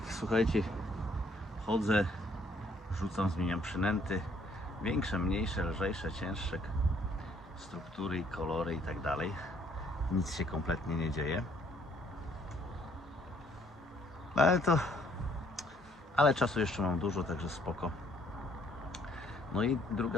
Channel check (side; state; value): both; normal; correlation 0.64